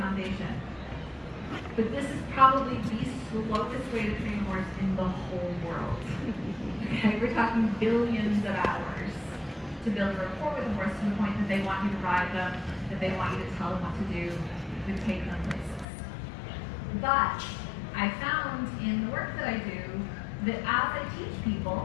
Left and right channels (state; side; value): drops out; right; at 15.9 s